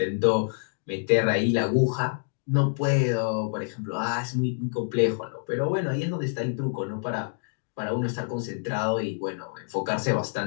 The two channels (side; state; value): right; silent; digital silence